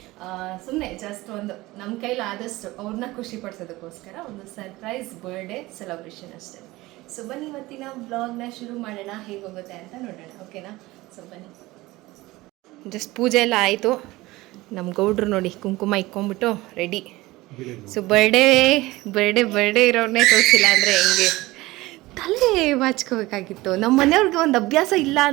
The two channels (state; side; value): quieter; left; 19.5 dB